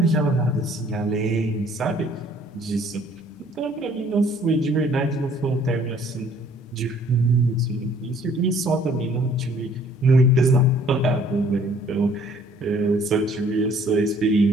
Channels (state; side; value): normal; both; correlation 0.58